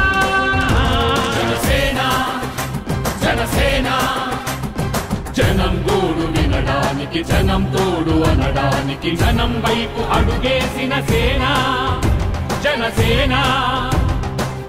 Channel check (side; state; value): both; identical; correlation 1.00